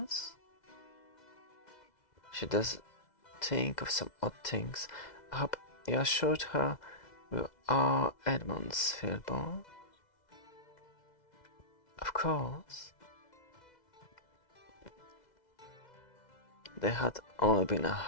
She does think of some odd things. I hope you assured her we are Edmondsfield born. Of course. There had only been a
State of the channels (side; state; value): right; late; 2.0 ms